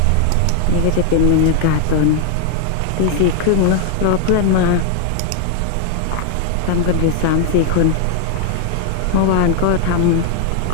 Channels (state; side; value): different; both; correlation 0.00